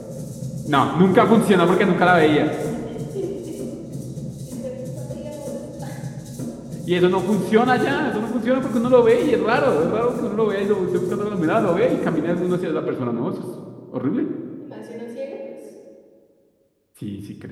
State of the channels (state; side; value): identical; both; correlation 1.00